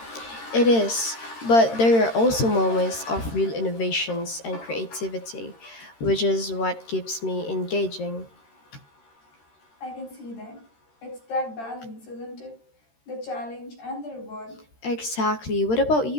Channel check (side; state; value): right; late; 13 ms